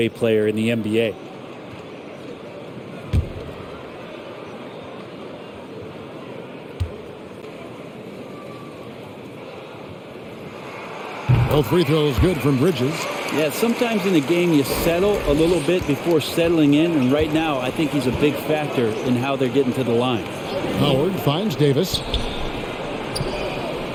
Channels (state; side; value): identical; both; correlation 1.00